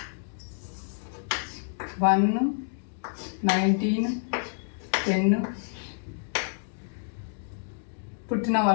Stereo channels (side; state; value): right; silent; digital silence